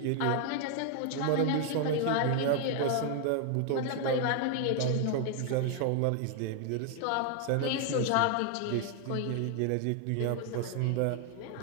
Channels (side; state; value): both; different; correlation 0.00